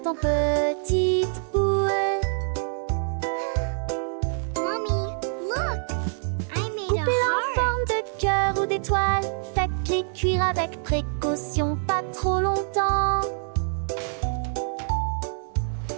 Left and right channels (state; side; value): silent; left; digital silence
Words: en petites boules. Mommy, look! I made a Coupez-la en heart. forme de cœur ou d'étoile. Faites-les cuire avec précaution, pas trop longtemps.